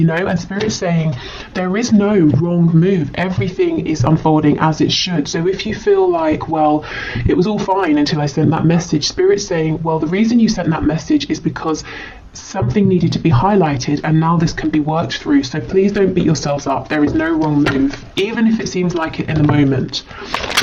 know. And Spirit's saying there is no wrong move. Everything is unfolding as it should. So if you feel like, well, it was all fine until I sent that message, Spirit's saying, well, the reason you sent that message is because something needed to be highlighted, and now this can be worked through. So please don't beat yourselves up. There is no wrong move, even if it seems like it in the moment.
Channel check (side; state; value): both; identical; correlation 1.00